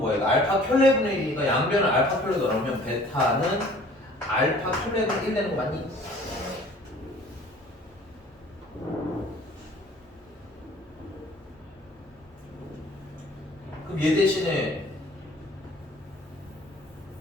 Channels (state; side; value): normal; both; correlation 0.51